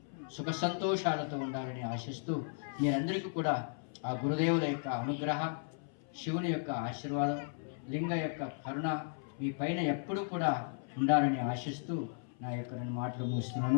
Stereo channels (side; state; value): right; silent; 54 dB below the other